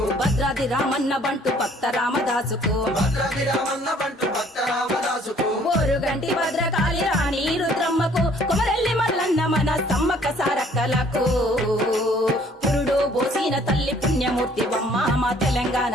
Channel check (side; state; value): both; normal; correlation 0.59